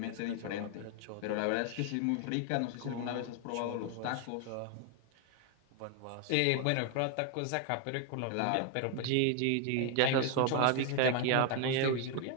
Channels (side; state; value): both; different; correlation 0.00